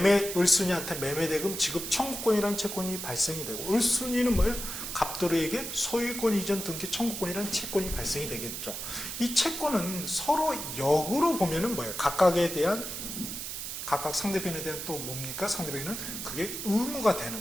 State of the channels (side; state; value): right; noise; hiss, 6 dB below the sound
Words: 을순이한테 매매대금 지급 청구권이라는 채권이 발생이 되고, 을순이는 뭐예요? 갑돌이에게 소유권 이전 등기 청구권이라는 채권이 발생이 되겠죠. 이 채권은 서로 역으로 보면은 뭐예요? 각각 상대편에 대한 또 뭡니까? 상대편에는 그게 의무가